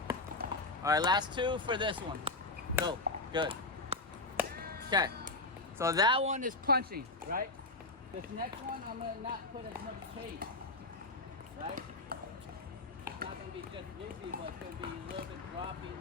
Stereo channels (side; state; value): right; quieter; 3.1 dB